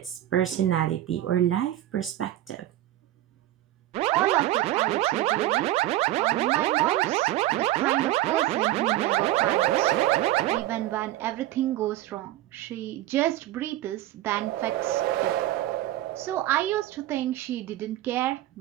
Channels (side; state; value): left; quieter; 14.7 dB